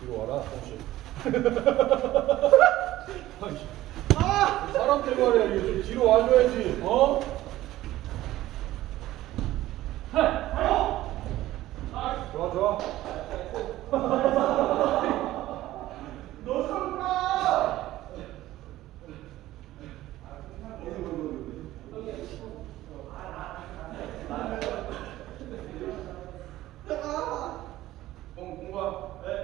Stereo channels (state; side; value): quieter; left; 15.4 dB